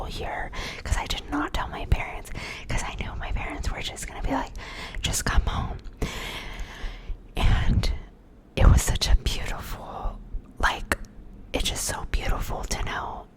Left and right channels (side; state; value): both; identical; correlation 1.00